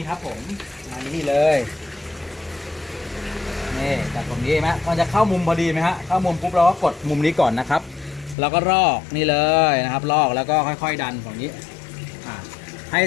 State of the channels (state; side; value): drops out; right; at 8.3 s